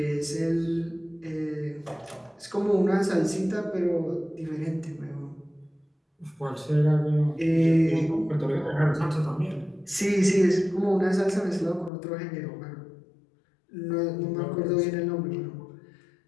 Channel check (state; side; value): drops out; right; at 11.9 s